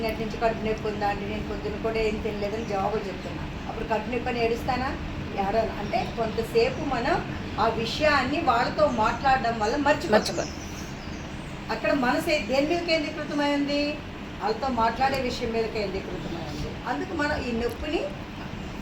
నుంచి కడుపు నొప్పి ఉందా అండి, నేను పొద్దున్న కూడా ఏం తినలేదని జవాబులు చెప్తున్నాను. అప్పుడు కడుపు నొప్పి అని ఏడుస్తానా? ఏడను. అంటే కొంతసేపు మనం ఆ విషయాన్ని వాళ్ళతో మాట్లాడడం వల్ల మర్చిపోతాం. అక్కడ మనసు దేని మీద కేంద్రీకృతమైంది? వాళ్ళతో మాట్లాడే విషయం మీద కేంద్రీకృతమైంది. అందుకు మనం ఈ నొప్పిని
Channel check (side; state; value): both; identical; correlation 1.00